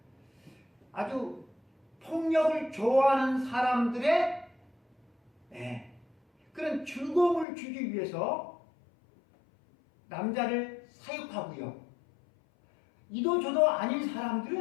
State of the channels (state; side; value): drops out; right; at 7.5 s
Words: 아주 폭력을 좋아하는 사람들의 그런 즐거움을 주기 위해서 남자를 사육하고요. 이도저도 아닌